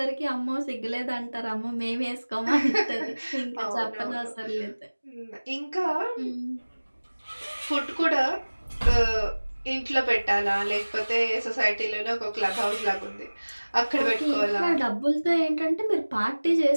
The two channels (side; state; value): both; inverted; correlation -1.00